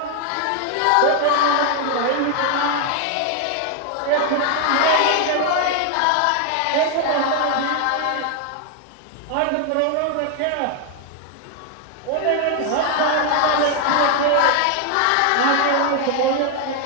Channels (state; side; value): different; both; correlation 0.00